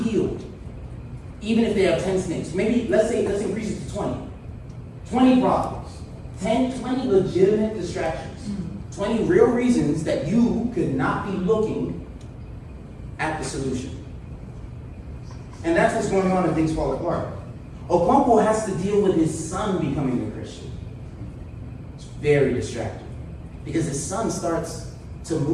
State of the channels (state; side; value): identical; both; correlation 1.00